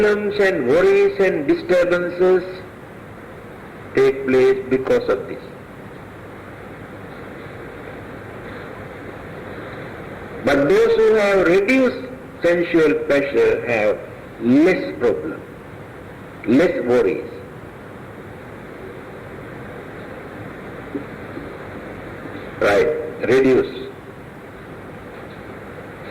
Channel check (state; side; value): identical; both; correlation 1.00